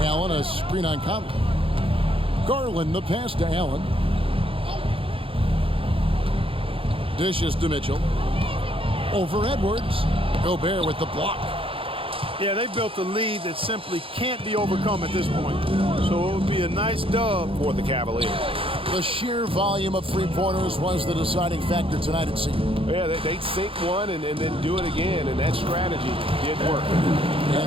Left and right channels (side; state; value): left; late; 0.26 ms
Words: Allen, a screen on Conley. Garland, the pass to Allen. Dishes to Mitchell. Over Edwards. Gobert with the block. Yeah, they built a lead that simply can't be overcome at this point. So it would be a nice dub for the Cavaliers. The sheer volume of three-pointers was the deciding factor tonight, it seemed. Yeah, they'd sink one and then do it again, and that strategy did work.